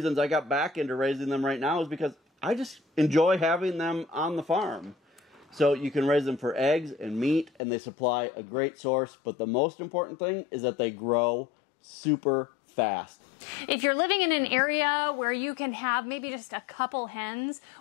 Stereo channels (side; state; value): right; drops out; at 7.5 s